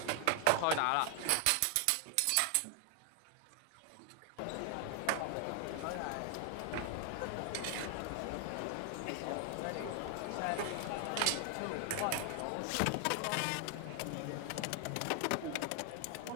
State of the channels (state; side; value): different; both; correlation 0.00